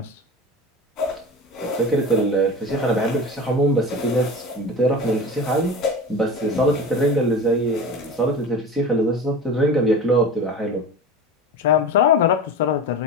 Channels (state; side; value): normal; both; correlation 0.31